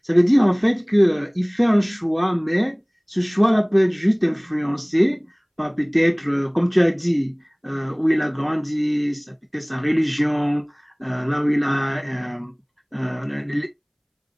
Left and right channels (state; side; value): identical; both; correlation 1.00